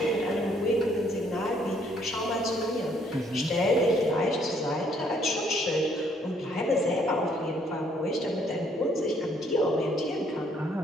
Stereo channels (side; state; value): both; normal; correlation 0.66